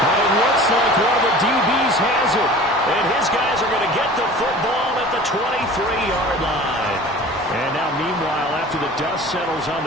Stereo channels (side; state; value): both; normal; correlation 0.42